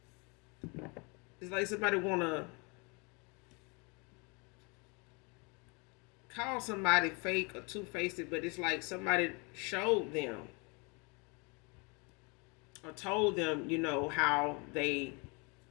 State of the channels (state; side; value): quieter; right; 30.9 dB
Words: It's like somebody wanna call somebody fake or two-faced, but it's like somebody showed them or told them, how they